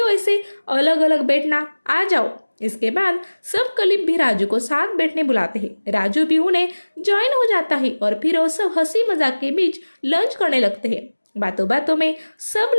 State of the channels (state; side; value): inverted; both; correlation -1.00